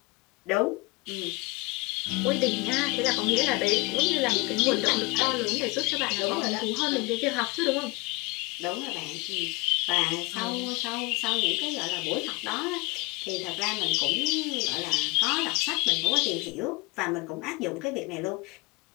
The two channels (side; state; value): right; quieter; 24.9 dB